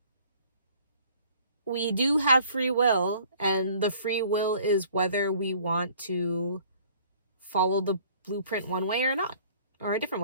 we do have free will, and the free will is whether we want to follow the blueprint one way or not, or a different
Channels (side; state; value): both; inverted; correlation -0.55